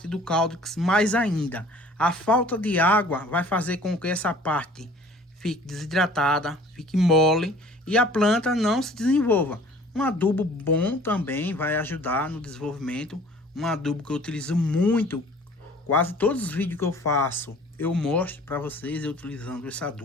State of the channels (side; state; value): both; normal; correlation 0.50